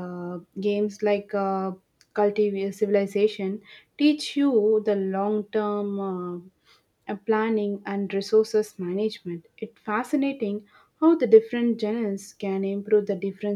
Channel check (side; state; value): both; identical; correlation 1.00